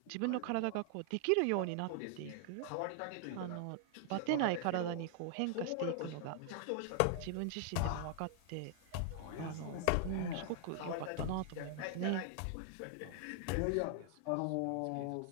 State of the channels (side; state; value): both; different; correlation 0.00